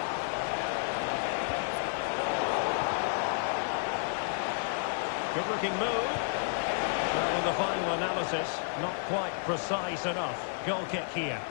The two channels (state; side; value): silent; right; 57 dB below the other